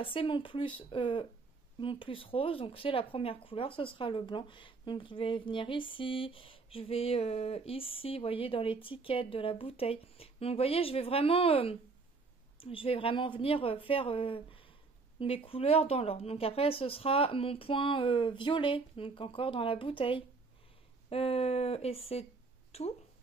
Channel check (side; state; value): left; quieter; 4.1 dB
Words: c'est mon plus rose. Donc, c'est la première couleur, ce sera le blanc. Donc, je vais venir ici, je vais ici, vous voyez, dans l'étiquette de la bouteille. Donc, vous voyez, je vais vraiment venir faire... mes couleurs dans l'ordre. Donc après ce sera mon point violet, donc encore dans la bouteille. Et c'est tout.